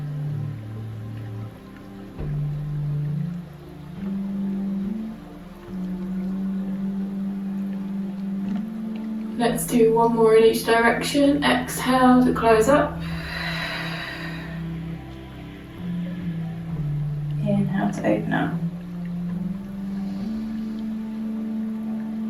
Let's do one more in each direction. Exhale to close up. Inhale to open up.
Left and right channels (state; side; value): identical; both; correlation 1.00